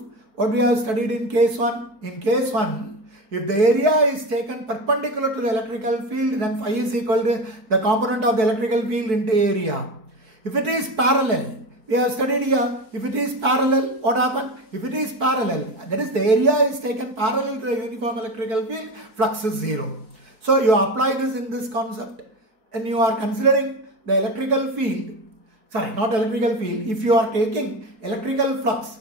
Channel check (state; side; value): late; left; 4.6 ms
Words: what we have studied in case 1? In case 1, if the area is taken perpendicular to the electrical field, then phi is equal to the component of the electrical field into area. If it is parallel, we have studied here, if it is parallel, what happens? If it is parallel, that is the area is taken parallel to the uniform electrical field, flux is 0. So you apply this in this concept and you are considering the electrical field, sorry, not electrical field, if you are taking electrical flux,